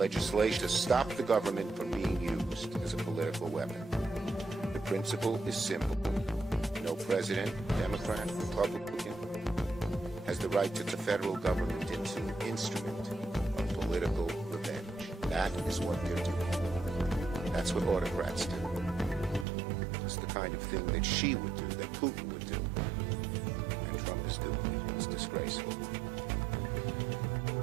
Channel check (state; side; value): drops out; left; at 19.5 s